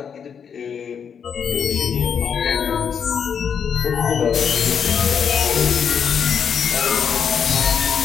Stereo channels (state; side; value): quieter; right; 7.2 dB